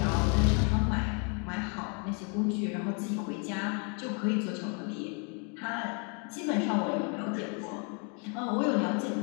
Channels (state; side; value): quieter; right; 36.5 dB